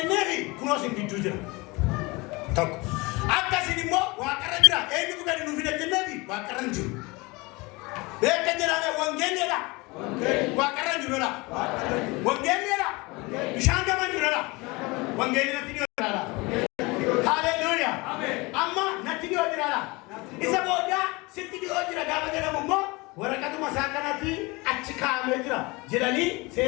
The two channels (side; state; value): right; quieter; 24.7 dB